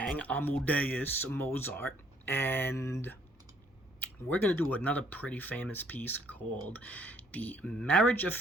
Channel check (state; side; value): normal; both; correlation 0.64